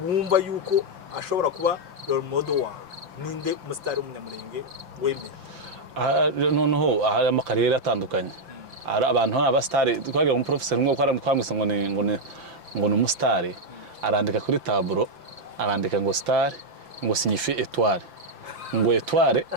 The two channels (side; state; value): left; late; 5.9 ms